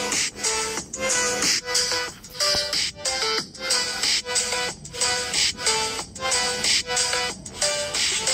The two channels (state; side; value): identical; both; correlation 1.00